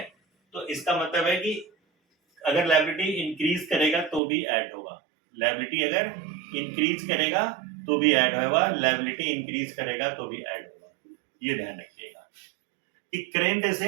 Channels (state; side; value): drops out; left; at 4.2 s